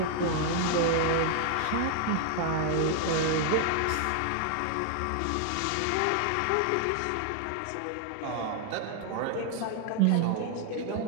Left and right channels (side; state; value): both; different; correlation 0.00